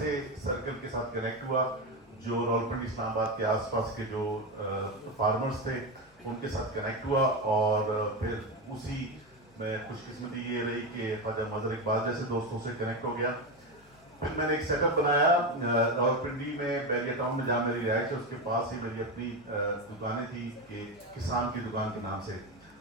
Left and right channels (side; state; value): both; normal; correlation 0.14